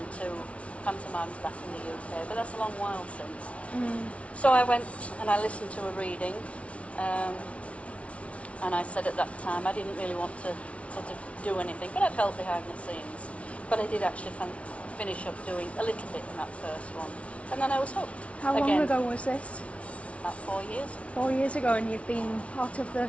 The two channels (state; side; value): late; right; 0.063 ms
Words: 2 pantomimes back in the UK, but that's a long while since. So I went and I listened to a reading, and I said at that time I didn't really want to sort of do anything, but I'd help behind the scenes. But I did actually finish up doing a little bit in that first one, and then I was hooked. How long ago was this? About 4 years. 4 years ago, and you've been part of the